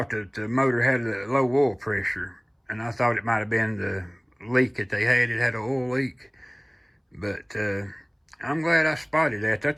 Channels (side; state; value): both; identical; correlation 1.00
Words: that the motor had a low oil pressure. And I thought it might have been the leak that they had. It had an oil leak. But I'm glad I spotted that.